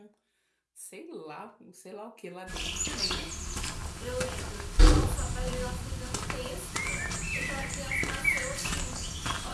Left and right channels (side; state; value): both; identical; correlation 1.00